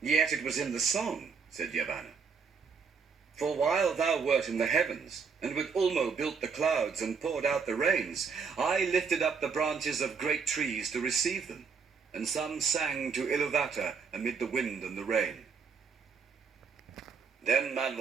Yet it was in the song, said Yavanna. For while thou wert in the heavens, and with Ulmo built the clouds and poured out the rains, I lifted up the branches of great trees to receive them, and some sang to Iluvatar amid the wind and the rain. Then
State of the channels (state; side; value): quieter; left; 5.6 dB